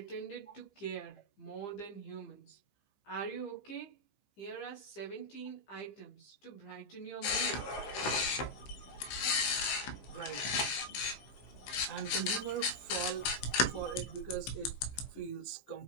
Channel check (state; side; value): late; right; 15 ms